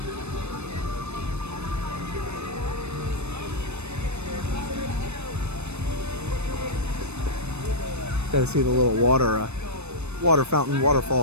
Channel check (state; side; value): late; left; 0.81 ms